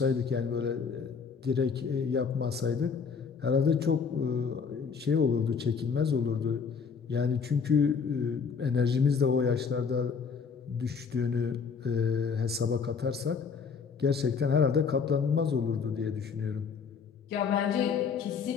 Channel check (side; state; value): right; quieter; 5.8 dB